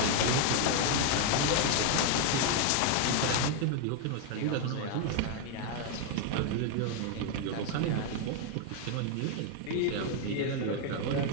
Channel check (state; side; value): different; both; correlation 0.00